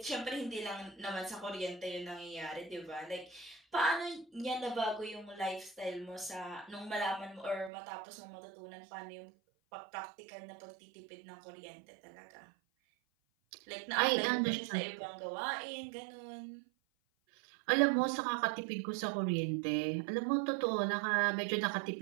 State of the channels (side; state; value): left; drops out; at 7.7 s